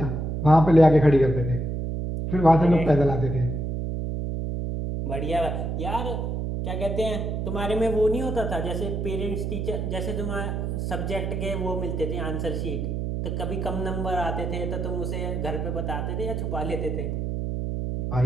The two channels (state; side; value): noise; right; hum, 2 dB below the sound